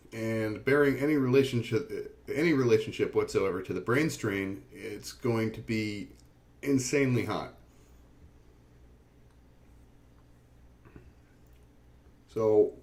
And bearing any relationship whatsoever to the Brainstrain, it's going to be insanely hot. So,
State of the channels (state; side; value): identical; both; correlation 1.00